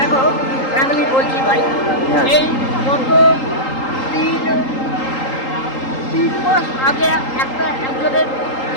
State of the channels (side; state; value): right; late; 3.8 ms